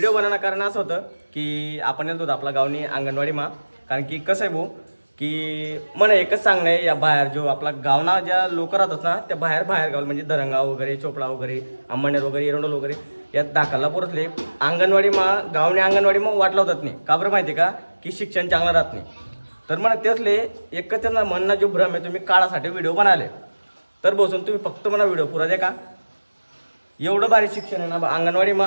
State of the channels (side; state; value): both; inverted; correlation -1.00